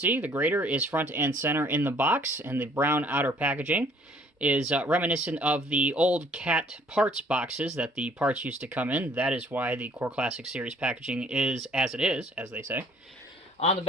the grader is front and center in the box, and the brown outer packaging is reminiscent of the old CAT parts boxes that the parts used to come in. That is why the Core Classic Series packaging is as it is, as they say. On the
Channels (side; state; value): both; normal; correlation 0.59